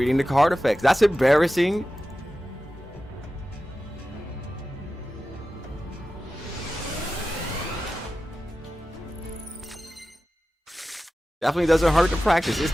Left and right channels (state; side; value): normal; both; correlation 0.94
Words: the card effects. That's embarrassing. Definitely doesn't hurt to practice. It's